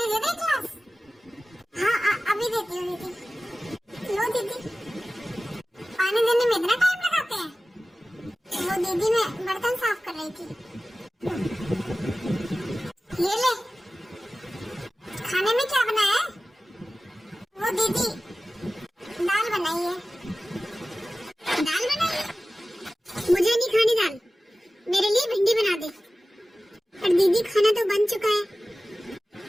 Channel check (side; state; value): both; normal; correlation 0.96